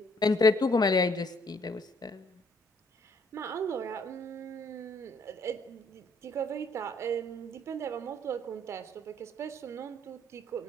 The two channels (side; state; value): both; normal; correlation 0.65